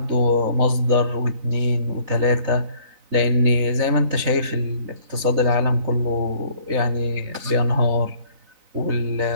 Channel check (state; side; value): late; left; 4.0 ms